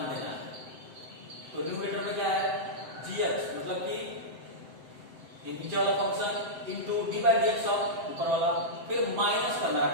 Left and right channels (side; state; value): left; late; 7.7 ms